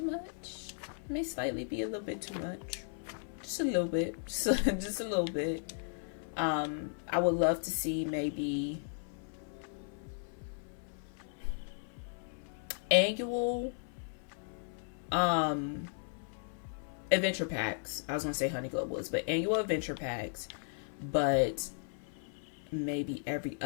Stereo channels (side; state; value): right; silent; 54 dB below the other